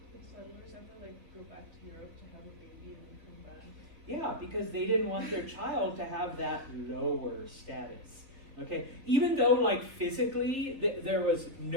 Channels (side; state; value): left; late; 3.6 ms